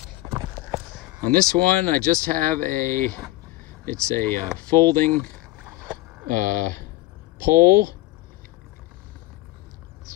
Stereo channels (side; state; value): right; quieter; 18.3 dB